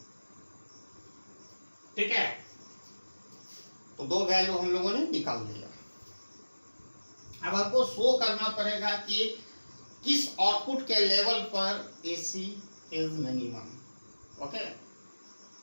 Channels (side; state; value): both; inverted; correlation -1.00